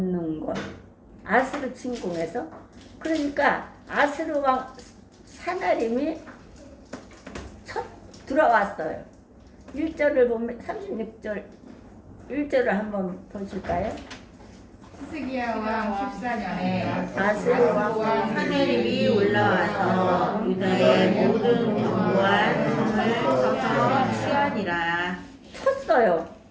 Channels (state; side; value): identical; both; correlation 1.00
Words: 것. 아수르 침공에서 그러니까 아수르 왕 사나림이 첫 들어왔어요. 1절을 보면 36절 1절을 한번 보실까요? 히스기야 왕 14년에 아수르 왕 사나림이 올라와서 유다의 모든 견고한 성을 쳐서 취하니라. 쳤어요.